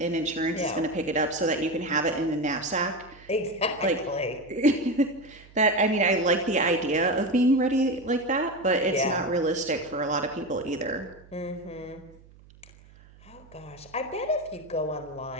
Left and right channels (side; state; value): right; noise; hum, 24 dB below the sound